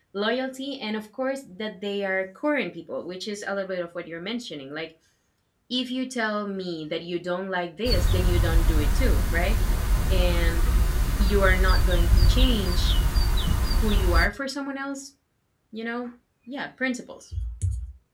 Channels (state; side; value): identical; both; correlation 1.00